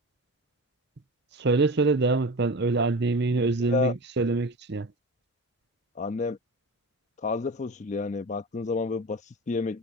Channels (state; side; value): normal; both; correlation 0.30